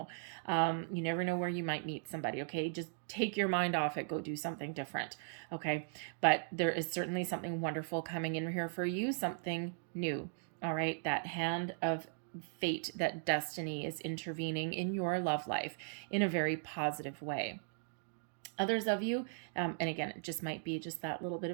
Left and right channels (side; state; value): left; silent; digital silence